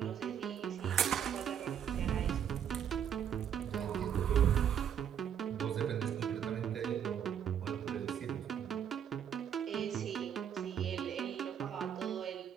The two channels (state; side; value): quieter; left; 8.8 dB